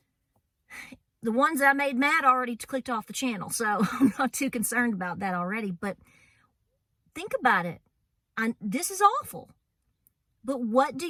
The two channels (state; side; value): identical; both; correlation 1.00